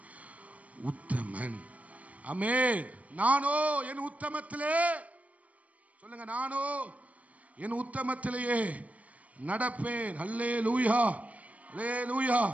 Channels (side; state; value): left; late; 0.068 ms